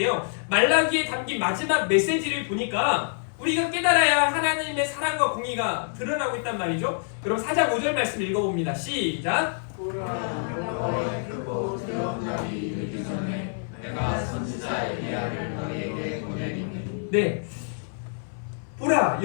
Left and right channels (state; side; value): silent; right; 59 dB below the other